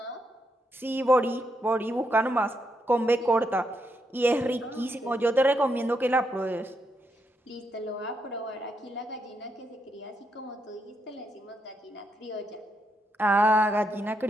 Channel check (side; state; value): both; normal; correlation 0.80